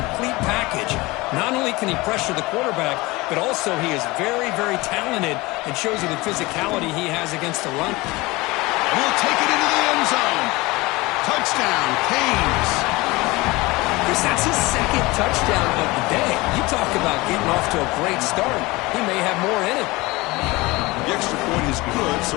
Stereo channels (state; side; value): quieter; right; 22.1 dB